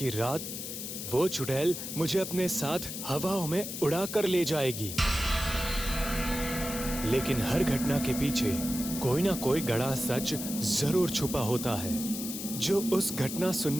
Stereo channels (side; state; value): left; noise; hiss, 7 dB below the sound